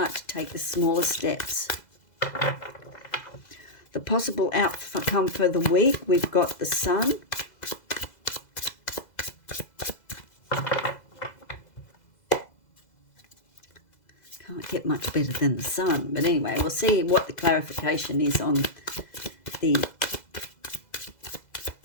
to take the smaller steps. The possible outcome for the week, we've got the Sun. Can't get much better than the Sun, but anyway, we'll see what the clarification is on the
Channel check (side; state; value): right; late; 2.0 ms